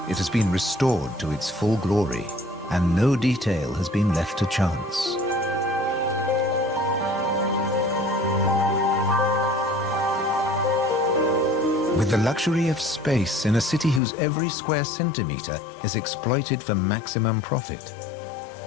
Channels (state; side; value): drops out; right; at 14.0 s